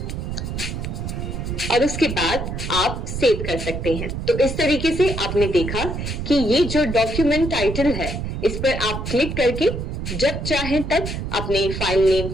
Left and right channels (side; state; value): right; noise; rumble, 5 dB below the sound